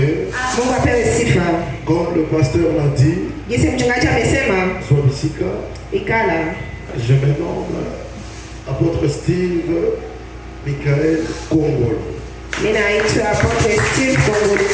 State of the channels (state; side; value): identical; both; correlation 1.00